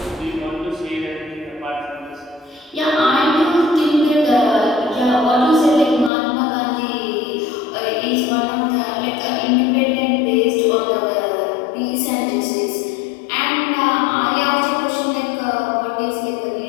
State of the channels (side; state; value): right; drops out; at 6.1 s